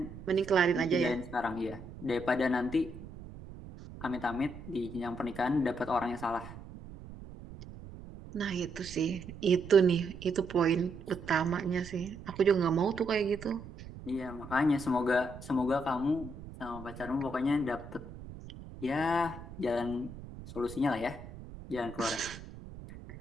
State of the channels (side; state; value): right; noise; rumble, 14 dB below the sound